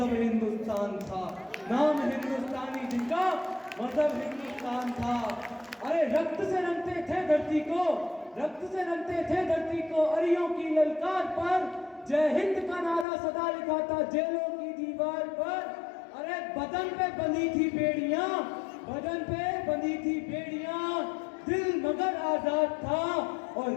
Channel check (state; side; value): drops out; right; at 13.1 s